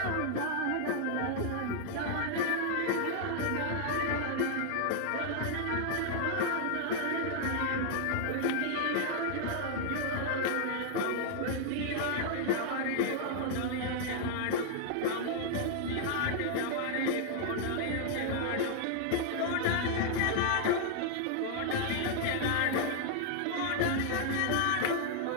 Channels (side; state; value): both; different; correlation -0.01